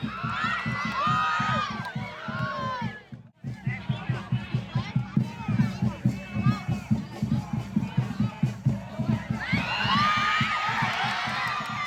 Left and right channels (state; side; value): identical; both; correlation 1.00